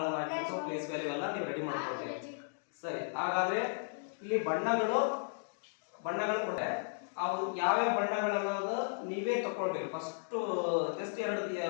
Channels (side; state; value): right; silent; digital silence